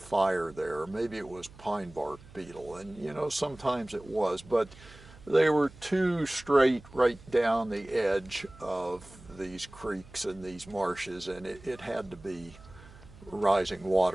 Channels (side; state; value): right; noise; hum, 21 dB below the sound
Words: there, maybe it was pine bark beetle, and you know, sometimes it was, but they were too straight right down the edge of these creeks and these marshes, and it had to be rising